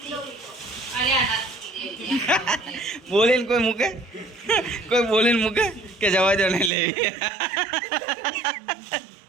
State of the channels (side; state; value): left; drops out; at 6.7 s